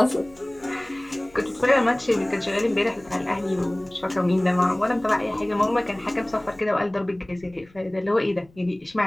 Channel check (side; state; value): left; noise; rumble, 28 dB below the sound